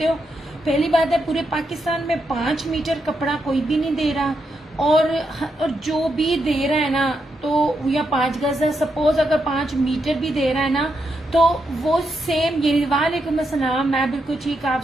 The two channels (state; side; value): normal; both; correlation 0.82